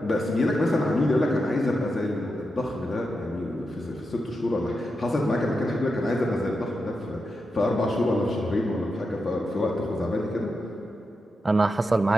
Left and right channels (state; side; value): normal; both; correlation 0.87